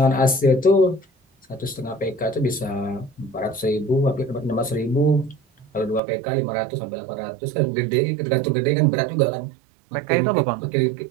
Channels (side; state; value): left; drops out; at 6.0 s